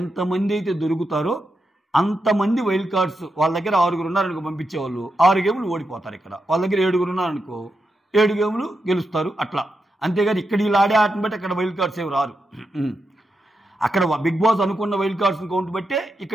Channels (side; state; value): both; normal; correlation 0.86